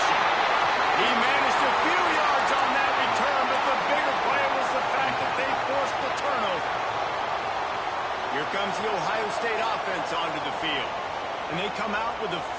He managed a few yards on that return, but the bigger play was the fact that they forced the turnover. Here comes the Ohio State offense onto the field. And they come out with a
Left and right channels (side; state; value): both; identical; correlation 1.00